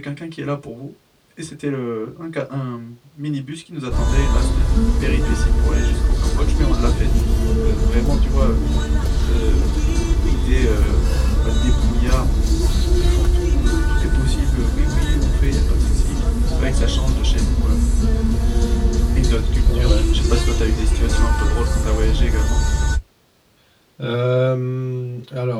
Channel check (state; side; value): identical; both; correlation 1.00